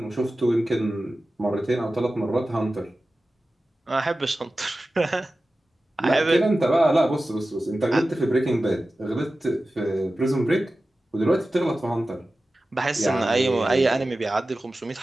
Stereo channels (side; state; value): both; normal; correlation 0.95